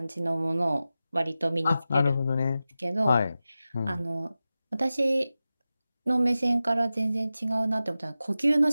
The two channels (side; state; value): both; inverted; correlation -0.94